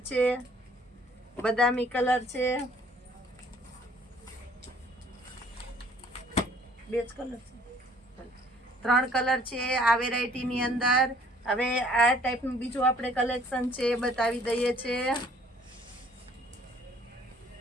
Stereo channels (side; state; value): both; normal; correlation 0.58